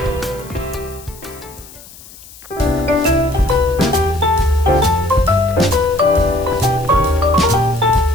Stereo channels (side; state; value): left; noise; hiss, 20 dB below the sound